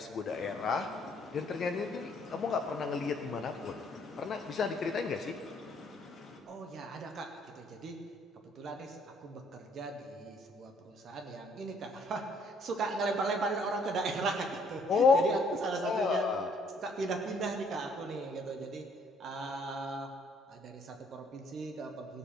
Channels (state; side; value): normal; both; correlation 0.64